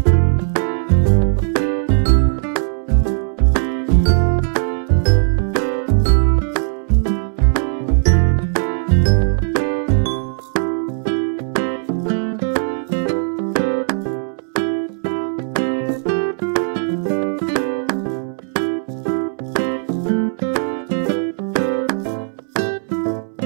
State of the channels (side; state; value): left; silent; digital silence